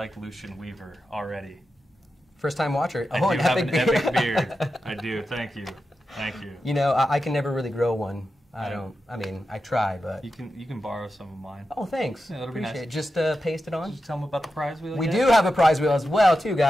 Lucian Weaver already. First time watcher. I do have an epic beard. I do. Thank you. Thank you. You know, I can never really grow one. I mean, I try, but you can borrow some of mine. Oh, thanks. Yeah, that'll be nice. Appreciate it. Just paste it on. Did you tell them about the prize wheel? We do have a prize wheel as well, too,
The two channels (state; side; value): normal; both; correlation 0.90